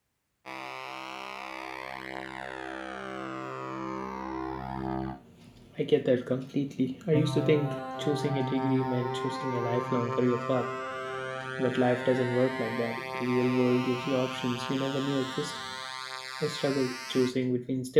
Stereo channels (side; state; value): both; identical; correlation 1.00